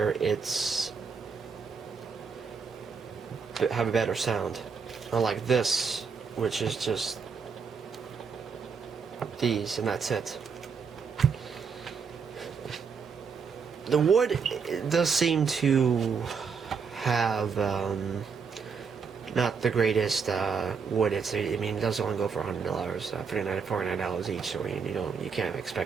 it's have a better sound, unlike this, which is just these and that's it. The wood does seem to have not the greatest wood. It does only go for $100, $49 each. So you can't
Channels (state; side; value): quieter; left; 5.8 dB